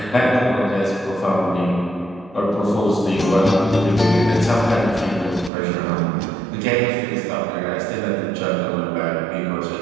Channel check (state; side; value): drops out; left; at 5.5 s